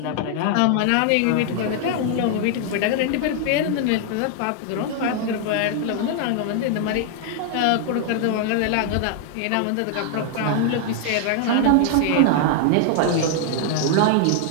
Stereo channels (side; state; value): both; different; correlation 0.00